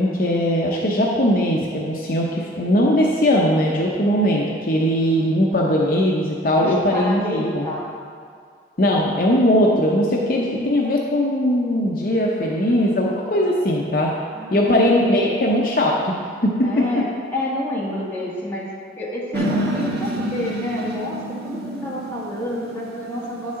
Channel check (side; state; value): both; normal; correlation 0.48